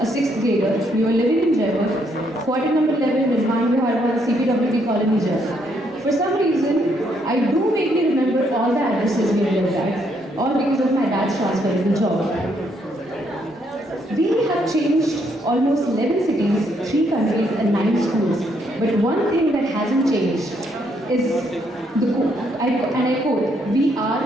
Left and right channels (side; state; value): both; normal; correlation 0.73